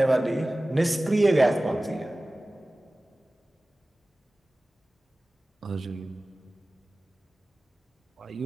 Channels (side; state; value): both; normal; correlation 0.97